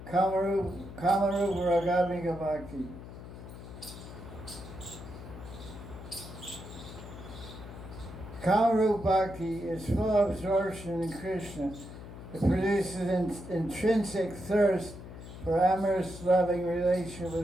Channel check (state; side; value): noise; left; hum, 13 dB below the sound